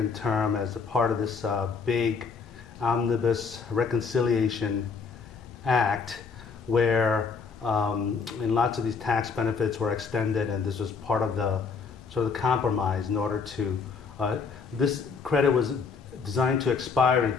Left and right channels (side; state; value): right; quieter; 5.3 dB